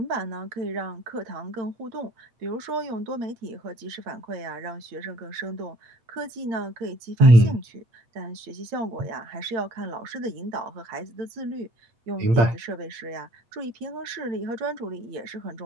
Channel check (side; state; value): left; late; 8.8 ms